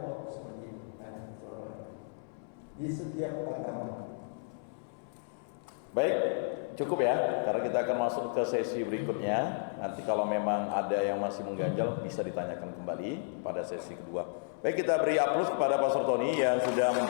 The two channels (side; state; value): right; silent; 56 dB below the other